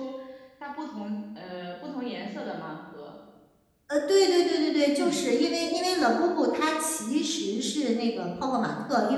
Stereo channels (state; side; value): identical; both; correlation 1.00